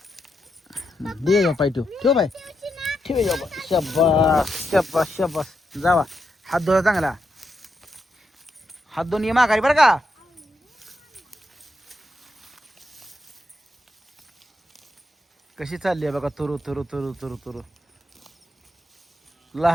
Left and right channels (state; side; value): normal; both; correlation 0.83